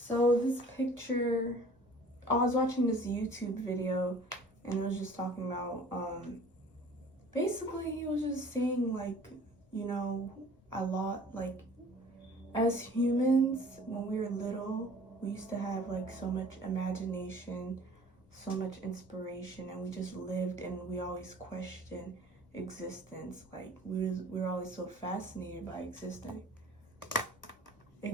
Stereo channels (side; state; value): left; noise; rumble, 29 dB below the sound